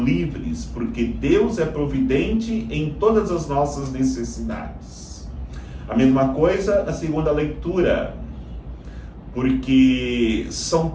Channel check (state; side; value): identical; both; correlation 1.00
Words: livres, porque Deus é providente em todas as nossas necessidades. A mesma coisa na segunda leitura, porque São